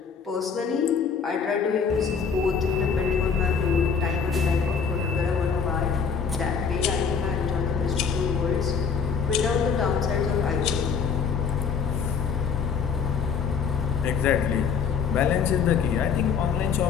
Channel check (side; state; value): right; quieter; 6.1 dB